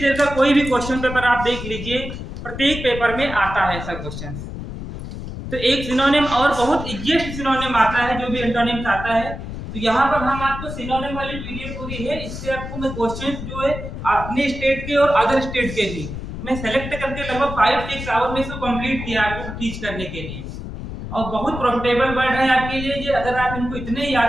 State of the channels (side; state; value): left; noise; rumble, 8 dB below the sound